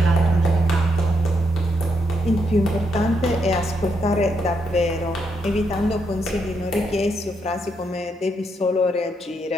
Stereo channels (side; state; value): both; normal; correlation 0.79